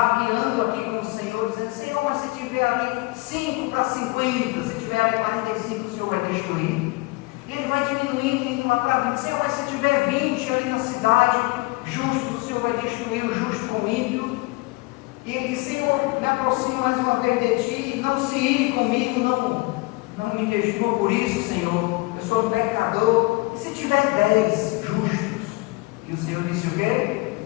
aqui com o Senhor, dizendo: Senhor, mas se tiver ali 5 para 50, se tiver ali 45, o Senhor vai destruir. E ele vai diminuindo, indo lá para 20. Senhor, mas se tiver 20 ali na cidade, justo, o Senhor vai destruir o justo com o ímpio. E ele diz: Senhor, me aproximo mais uma vez de ti, não se ire comigo, não me destrua por isso, Senhor, eu sou um pecador. E se tiver 10 justos? E o Senhor disse o quê?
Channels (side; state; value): right; quieter; 23.8 dB